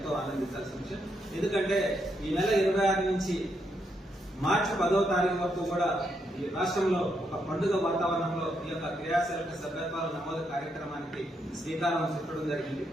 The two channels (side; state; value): both; normal; correlation 0.79